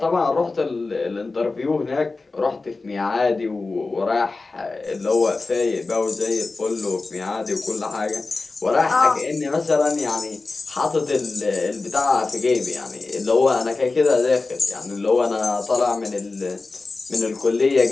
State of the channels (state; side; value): quieter; right; 3.7 dB